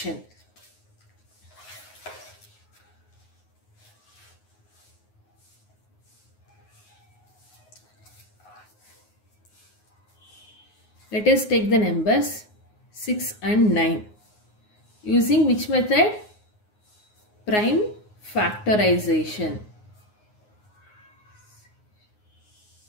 Let us take the numbers 6 and 9. Using which method? Prime factorization.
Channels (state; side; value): late; right; 9.5 ms